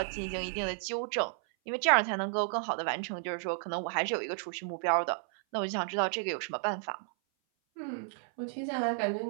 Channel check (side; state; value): left; silent; 56 dB below the other